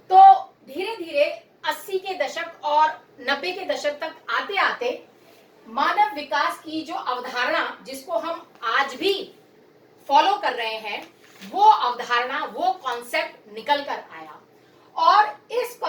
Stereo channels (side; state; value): both; identical; correlation 1.00